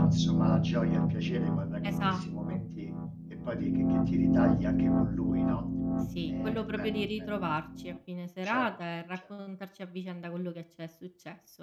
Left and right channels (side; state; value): both; identical; correlation 1.00